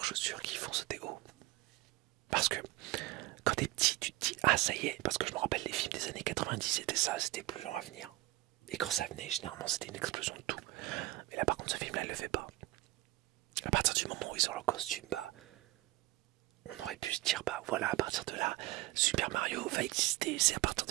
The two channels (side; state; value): left; quieter; 19.1 dB